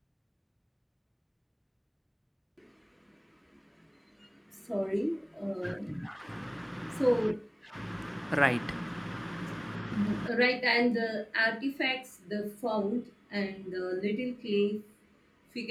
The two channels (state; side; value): identical; both; correlation 1.00